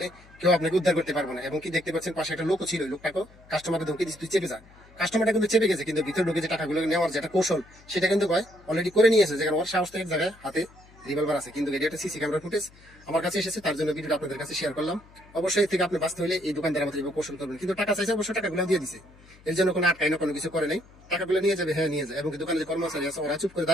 কেউ আপনাকে উদ্ধার করতে পারবে না। এবং কি দেখতে পাচ্ছেন পাশে একটা লোকও ছিল, লোকটাকে কাস্টমারকে ধমকি দিচ্ছে তুই চেপে যা। কাস্টমারটা কিন্তু চেপে গেছে, কিন্তু ভিতরে ঢুকে যে টাকাগুলো নেওয়ার যে একটা কৌশল সেটা কিন্তু অলরেডি করে নিয়েছে, যেখানে ওর সাহস এক জায়গায় হাতে রিভলভার আছে। কিন্তু এটা একটা সিসি ক্যামেরা ফুটেজ আমার কাছে এসেছে, তার জন্য ভিডিওটা আপনাদের কাছে শেয়ার করলাম। অবশ্যই থেকে আপনি বাঁচতে হলে এই দোকানদার মতো কৌশল করবেন। কিন্তু টাকা চাইছে, অবশ্যই টাকাগুলো দিয়ে দিছে, এর জন্য কোনো আটকাই না, কোনো কিছু করে নাই। টাকাগুলো নিয়ে যাবে, হ্যাঁ নিয়ে যায়। এবং দোকানে যে কর্মচারী আছে ওরা চুপ করে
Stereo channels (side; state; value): left; noise; hum, 25 dB below the sound